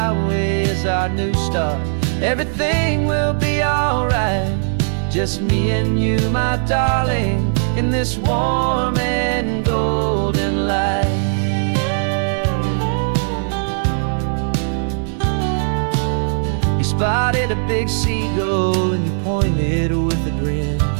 is our new start, everything will be alright, just me and you, my darling, in this warm and golden light. You spotted a big seagull and you pointed with a grin,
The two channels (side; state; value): left; silent; digital silence